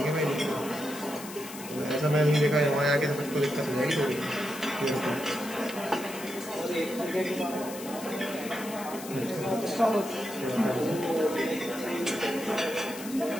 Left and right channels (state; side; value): noise; left; hiss, 13 dB below the sound